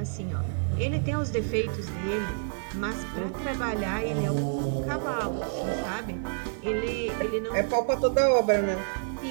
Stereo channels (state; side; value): silent; left; digital silence